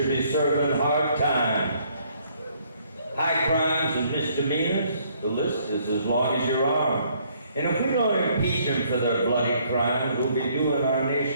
be serving hard time. High crimes and misdemeanors, the list is as long as your arm. And if we don't impeach them for their bloody crimes, we'll be doing our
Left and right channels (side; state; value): both; inverted; correlation -0.66